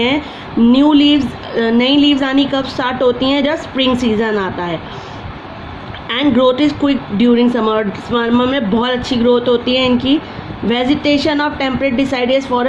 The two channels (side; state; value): both; identical; correlation 1.00